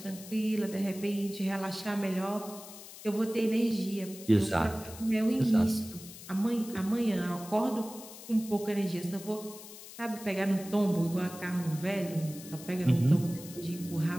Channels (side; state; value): left; noise; hiss, 15 dB below the sound